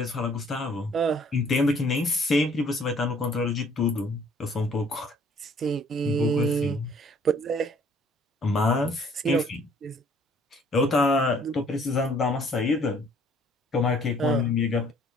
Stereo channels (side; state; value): both; normal; correlation 0.59